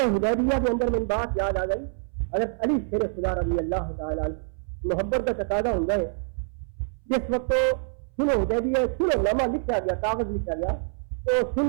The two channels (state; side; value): silent; left; 61 dB below the other